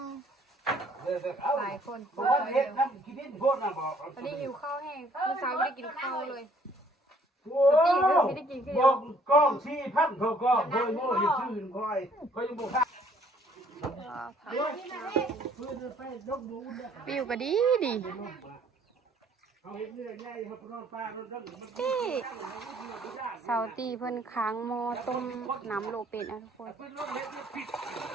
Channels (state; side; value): normal; both; correlation 0.61